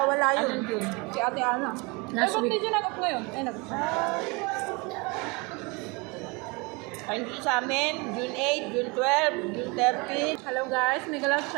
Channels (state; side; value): quieter; left; 27.8 dB